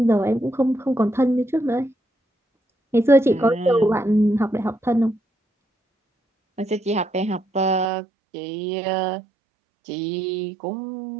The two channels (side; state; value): left; drops out; at 7.9 s